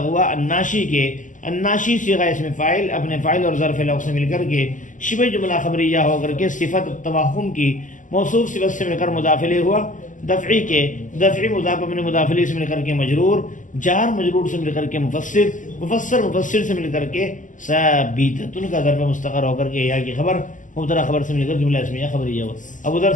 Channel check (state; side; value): late; right; 0.37 ms